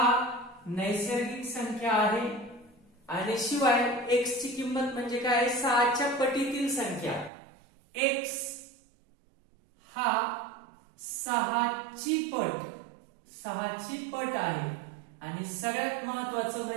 नैसर्गिक संख्या आहे आणि शिवाय x ची किंमत म्हणजे काय? 6च्या पटीतील संख्या. x हा 6ची पट आहे आणि सगळ्यात महत्वाचं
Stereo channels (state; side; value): drops out; left; at 7.3 s